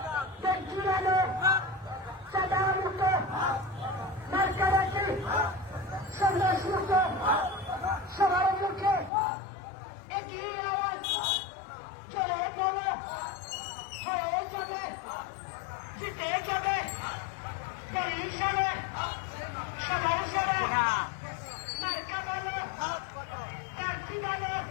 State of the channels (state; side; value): drops out; right; at 9.1 s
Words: জুড়ানো সাদা মুক্ত মার্কারাকি সন্ন্যাস মুক্ত সবার মুখে একই আওয়াজ চলে বলো হয়ে যাবে জিতে যাবে বরিশালে সবার সারা